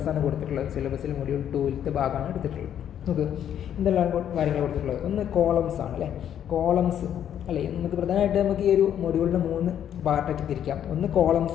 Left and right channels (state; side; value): quieter; right; 9.8 dB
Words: കൊടുത്തിട്ടുള്ളത്. സിലബസിൽ മൊഡ്യൂൾ 2-ലത്തെ ഭാഗമാണ് എടുത്തിട്ടുള്ളത്. നമുക്ക് എന്തെല്ലാം കാര്യങ്ങൾ കൊടുത്തിട്ടുള്ളത്, ഒന്ന് കോളംസ് ആണ് അല്ലേ. കോളംസ് അല്ലേ, നമുക്ക് പ്രധാനമായിട്ട് നമുക്ക് ഈ ഒരു മൊഡ്യൂളിൻ്റെ 3 പാർട്ടാക്കി തിരിക്കാം. ഒന്ന്